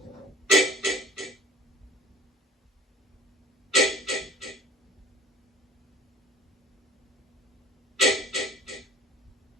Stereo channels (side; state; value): both; normal; correlation 0.47